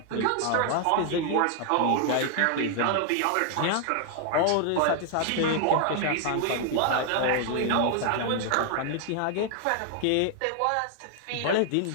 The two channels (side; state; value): both; different; correlation 0.00